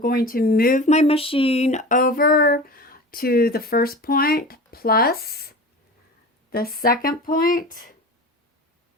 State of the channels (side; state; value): both; normal; correlation 0.34